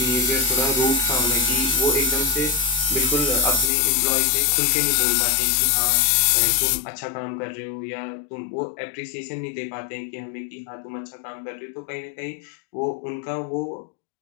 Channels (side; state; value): right; drops out; at 3.7 s